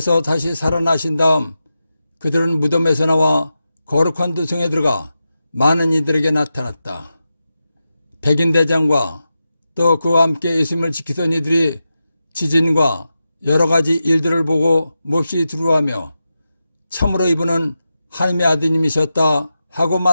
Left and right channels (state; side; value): inverted; both; correlation -0.90